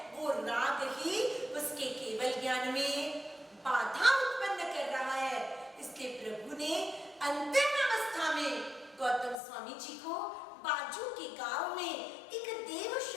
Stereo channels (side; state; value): right; drops out; at 9.3 s